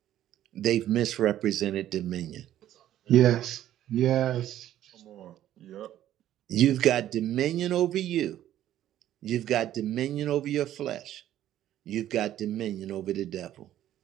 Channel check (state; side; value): quieter; left; 12.3 dB